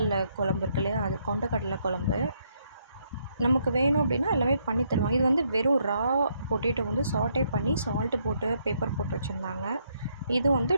குழம்பு இருக்கு இல்லையா? அது கொண்டக்கடலை குழம்பு. நமக்கு வேணும் அப்படின்னா எல்லாமே பண்ணி தருவாங்க. இது வந்து வெறும் ரா பொட்டேட்டோ வந்து சாட்டே பண்ணி சால்ட்டு போட்டு பெப்பர் போட்டு வச்சுருந்தாங்க. இது வந்து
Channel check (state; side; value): inverted; both; correlation -0.73